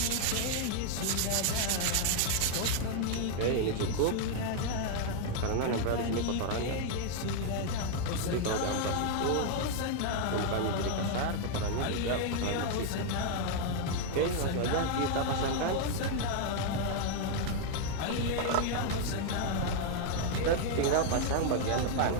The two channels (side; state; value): both; different; correlation 0.00